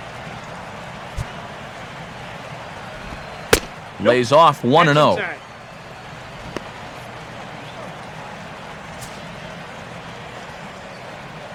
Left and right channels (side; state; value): both; identical; correlation 1.00